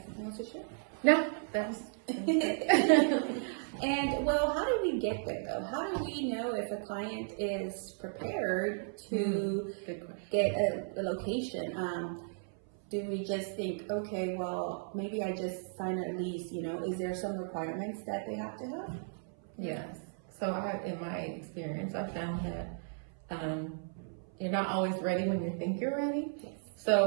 something else to share? No, that's And well, how do we get there though? How do we know if a client is prepared to get a location? Do we just think, okay, well, maybe I just sign a lease, is there some requirements that they have to have? Yes. So in my experience, I found that you're not always ready when you think you're ready. Yes.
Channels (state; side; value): silent; left; 55 dB below the other